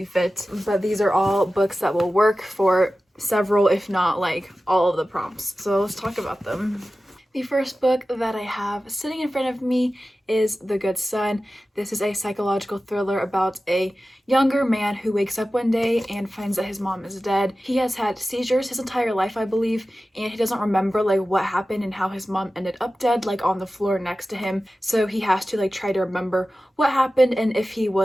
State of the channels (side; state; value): both; normal; correlation 0.95